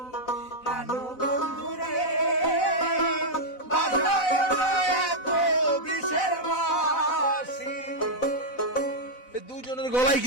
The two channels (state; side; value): late; right; 4.0 ms